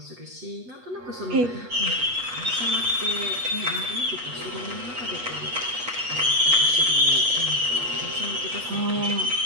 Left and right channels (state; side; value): late; left; 8.2 ms